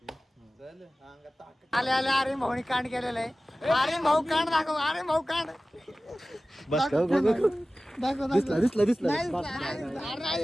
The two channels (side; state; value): both; normal; correlation 0.96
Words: आले अरे भाऊनी कांड केलेलं आहे अरे भाऊ कांड दाखव अरे भाऊ कांड बस दाखव दिसला